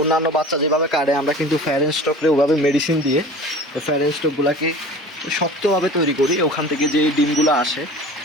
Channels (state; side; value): normal; both; correlation 0.40